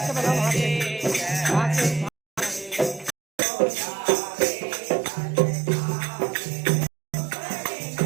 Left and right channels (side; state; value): left; drops out; at 3.2 s